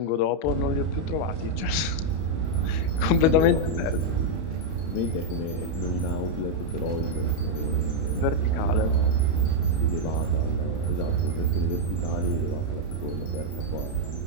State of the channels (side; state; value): right; late; 31 ms